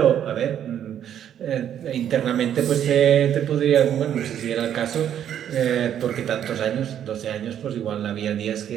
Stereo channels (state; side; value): quieter; left; 9.9 dB